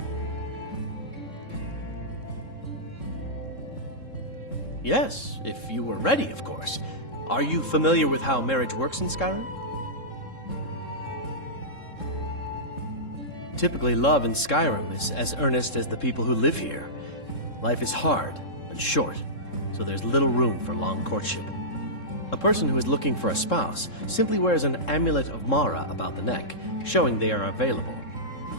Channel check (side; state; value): right; late; 3.7 ms